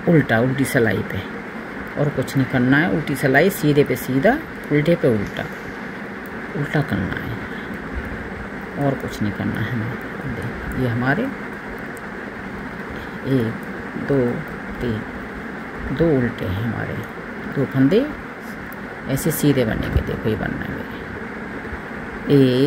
उल्टा, उल्टी सिलाई पे, और कुछ नहीं करना है। उल्टी सिलाई, सीधे पे सीधा, उल्टे पे उल्टा, उल्टा करना है और कुछ नहीं करना है हमें। ये हमारे 1 2 3, 2 उल्टे हैं हमारे, 2 फंदे ऐसे सीधे बनेंगे, देखो ये बनना है मेरे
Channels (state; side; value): identical; both; correlation 1.00